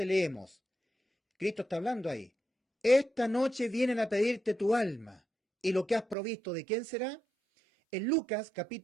leemos, Cristo está hablando ahí: esta noche vienen a pedirte tu alma, y lo que has provisto, ¿de quién será? En Lucas,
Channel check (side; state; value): left; drops out; at 6.2 s